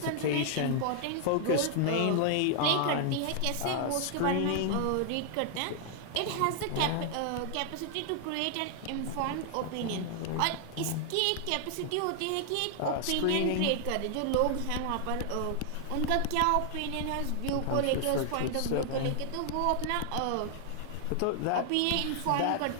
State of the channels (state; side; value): different; both; correlation 0.00